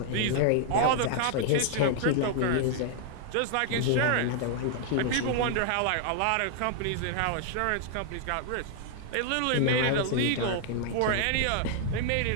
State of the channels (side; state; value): both; different; correlation 0.00